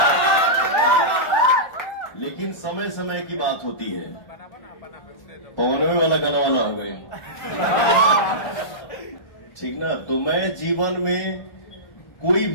लेकिन समय समय की बात होती है। पवनवे वाला गाना वाला हो गए, ठीक ना? तो मैं जीवन में कोई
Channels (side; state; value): right; late; 1.4 ms